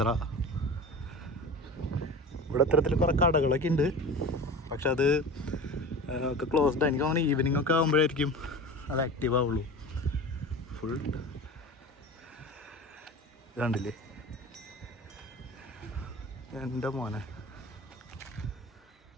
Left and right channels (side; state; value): both; normal; correlation 0.34